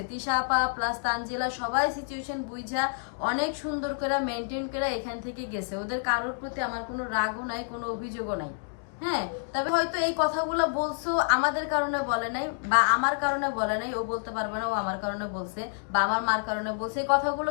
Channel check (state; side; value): silent; right; digital silence